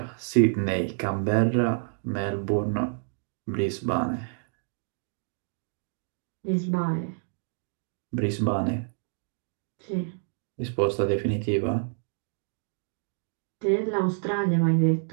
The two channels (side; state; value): left; silent; digital silence